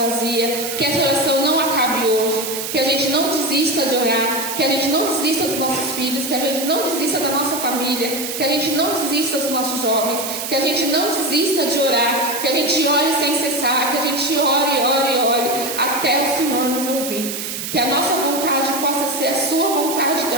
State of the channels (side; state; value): right; noise; hiss, 5 dB below the sound